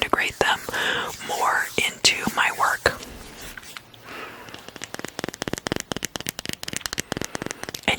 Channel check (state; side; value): identical; both; correlation 1.00